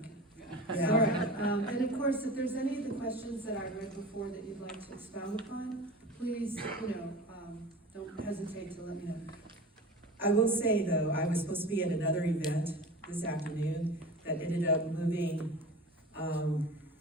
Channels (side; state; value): both; normal; correlation 0.35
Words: Yeah. All right, and of course, if there's any of the questions that I read before that you'd like to expound upon, please, don't hesitate to let me know. I will say though, I was supposed to be at another event this afternoon that ended up moving